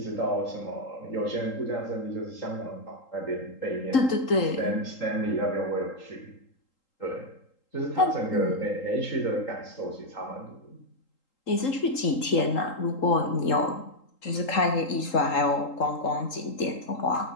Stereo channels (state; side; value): late; right; 3.8 ms